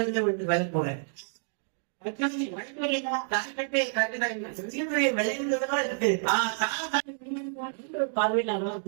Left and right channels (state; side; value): silent; left; digital silence